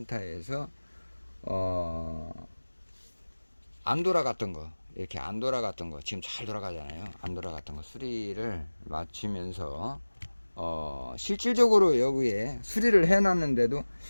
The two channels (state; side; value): inverted; both; correlation -1.00